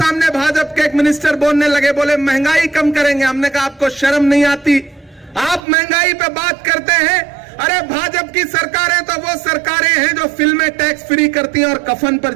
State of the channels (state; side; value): drops out; left; at 5.6 s